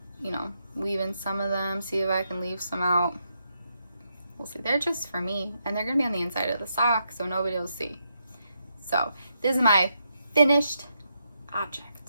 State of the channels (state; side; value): inverted; both; correlation -0.81